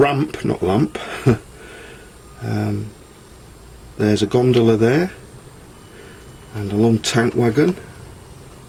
not lamp. There's a gondola there, and a long tank wagon.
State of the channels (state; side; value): identical; both; correlation 1.00